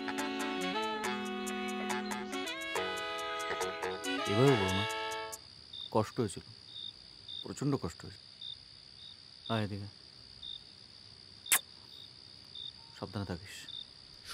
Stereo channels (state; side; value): identical; both; correlation 1.00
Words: এভাবে বলো না, কষ্ট হয়েছিল, প্রচণ্ড কষ্ট হয়েছে। আয় এদিকে, সাবধানে থাকিস,